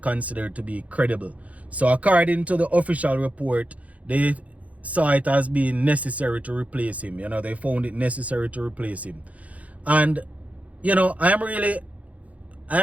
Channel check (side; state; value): left; late; 0.068 ms